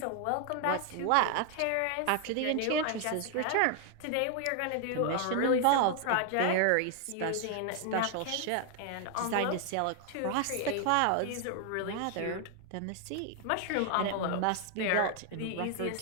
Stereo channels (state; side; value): different; both; correlation 0.00